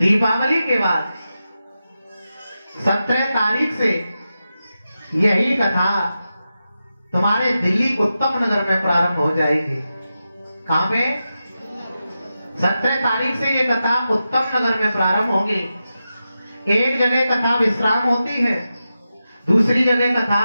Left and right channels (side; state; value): both; inverted; correlation -0.91